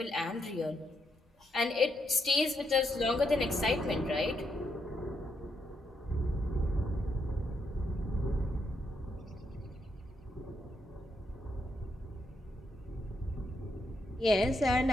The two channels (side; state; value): both; normal; correlation 0.79